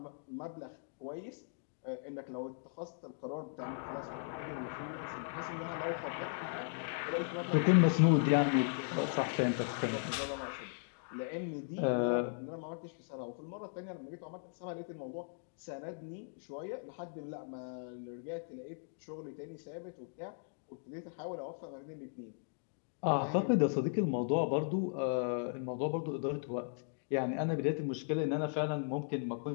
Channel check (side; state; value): right; silent; digital silence